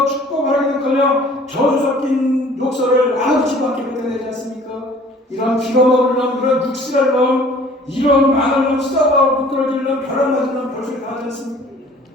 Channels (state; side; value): normal; both; correlation 0.51